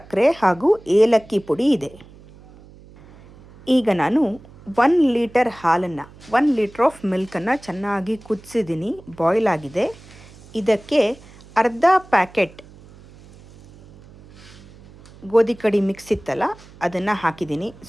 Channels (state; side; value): noise; right; hum, 22 dB below the sound